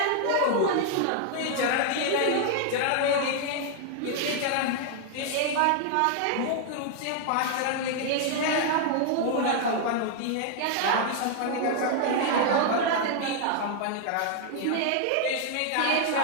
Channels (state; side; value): different; both; correlation 0.00